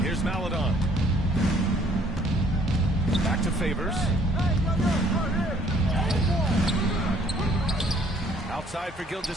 Here's Maladon. Back to Favors. Outside for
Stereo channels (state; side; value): normal; both; correlation 0.60